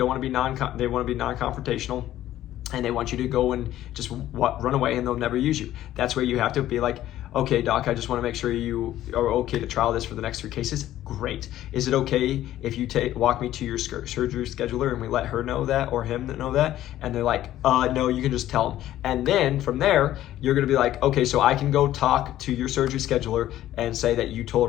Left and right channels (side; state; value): right; quieter; 13.4 dB